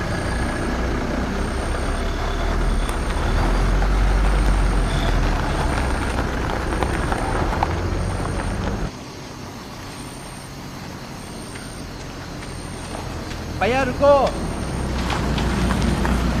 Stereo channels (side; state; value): both; identical; correlation 1.00